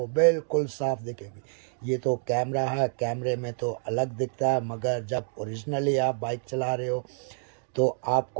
बिल्कुल साफ दिखेगी। ये तो कैमरा है, कैमरे में तो अलग दिखता है, मगर जब ओरिजिनली आप बाइक चला रहे हो तो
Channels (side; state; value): left; silent; digital silence